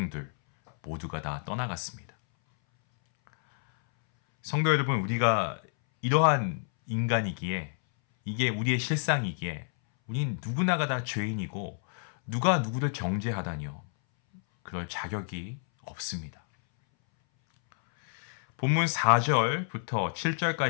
모두가 다 떠나갔습니다. 성도 여러분, 우리가 이러한 인간이기에 이게 우리의 실상이기에 우린 누구나가 다 죄인이고 누가 누구를 정죄하다니요. 그럴 자격이 없습니다. 본문 4절부터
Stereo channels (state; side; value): silent; right; 59 dB below the other